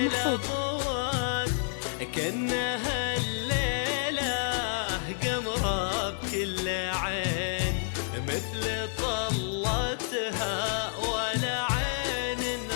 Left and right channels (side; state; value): right; silent; digital silence